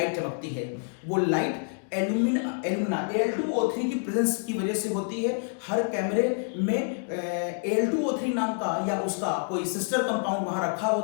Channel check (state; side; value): silent; right; 55 dB below the other